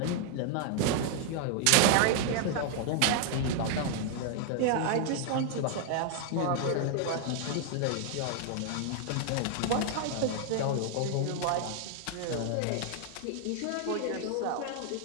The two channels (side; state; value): both; different; correlation 0.00